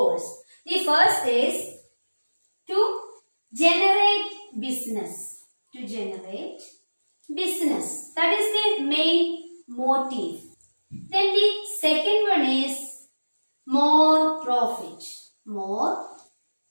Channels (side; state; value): both; inverted; correlation -1.00